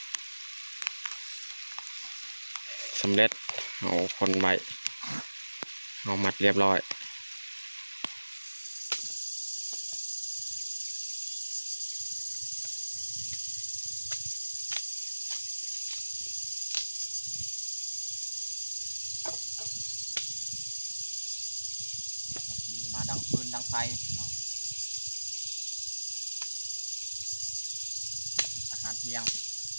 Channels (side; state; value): both; inverted; correlation -1.00